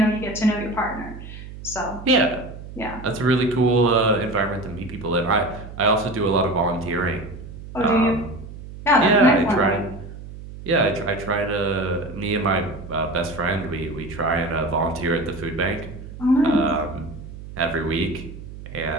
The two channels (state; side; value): noise; right; hum, 13 dB below the sound